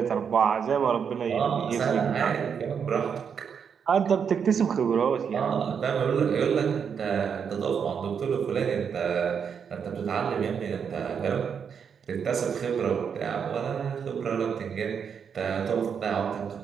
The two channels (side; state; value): left; quieter; 7.0 dB